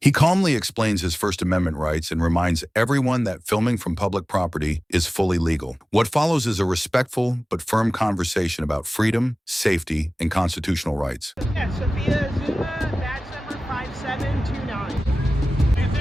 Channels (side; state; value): both; normal; correlation 0.97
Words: calmly explains his First Amendment rights and reminds everyone that filming from public property is fully legal. What follows is a respectful but firm conversation about freedom, safety, and constitutional rights. Yeah, Sophia Zuma, badge number 5729. Take a